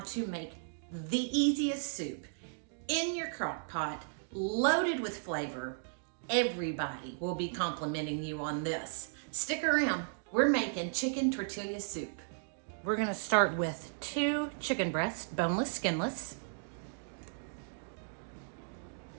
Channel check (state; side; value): silent; left; digital silence